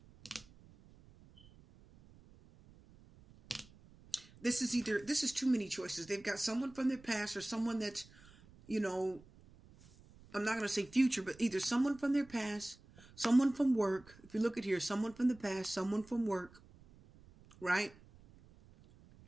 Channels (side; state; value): right; noise; rumble, 24 dB below the sound